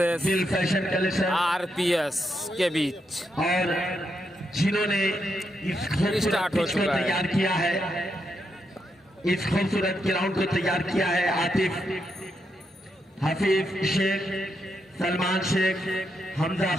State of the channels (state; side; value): normal; both; correlation 0.82